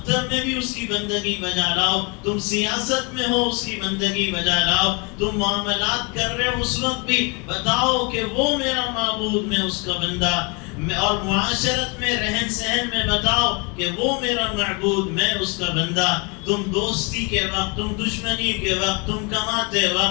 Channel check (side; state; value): right; quieter; 31.2 dB